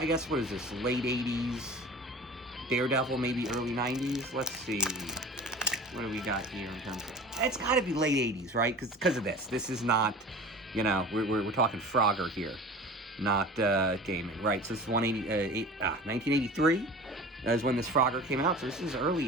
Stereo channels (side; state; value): both; normal; correlation 0.38